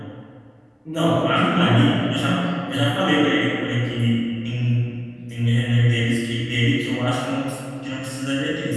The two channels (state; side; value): identical; both; correlation 1.00